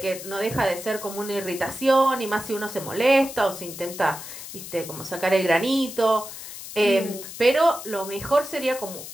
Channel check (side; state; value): left; noise; hiss, 11 dB below the sound